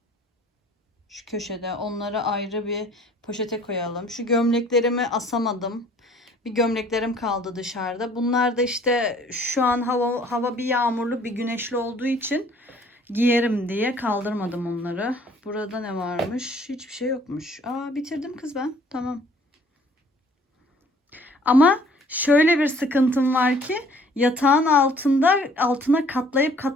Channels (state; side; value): normal; both; correlation 0.56